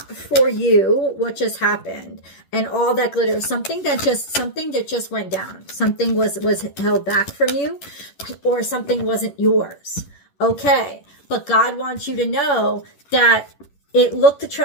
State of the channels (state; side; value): late; right; 11 ms